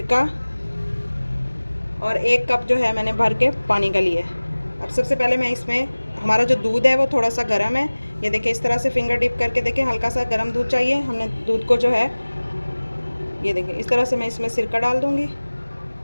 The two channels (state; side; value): inverted; both; correlation -1.00